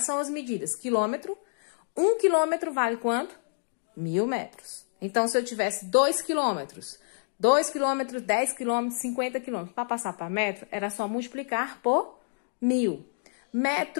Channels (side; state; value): right; silent; digital silence